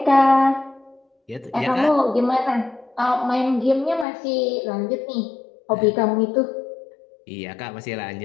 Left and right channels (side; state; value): right; drops out; at 4.0 s